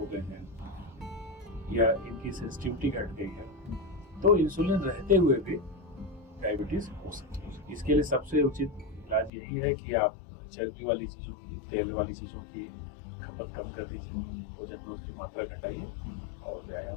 गए हैं या इनकी सेंसिटिविटी घट गई है, तो इंसुलिन रहते हुए भी डायबिटीज हो सकती है। इसके लिए सबसे उचित इलाज यही है कि आप चर्बी वाली चीजों की, तेल वाली चीजों की खपत कम कर दीजिए, भोजन में उसकी मात्रा घटाइए और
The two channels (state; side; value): drops out; right; at 9.3 s